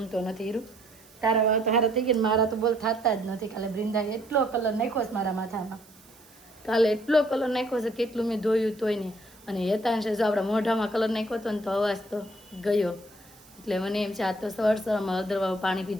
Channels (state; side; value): noise; right; hiss, 26 dB below the sound